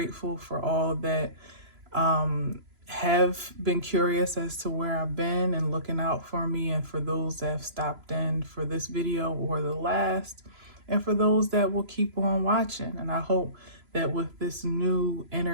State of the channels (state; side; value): late; left; 3.0 ms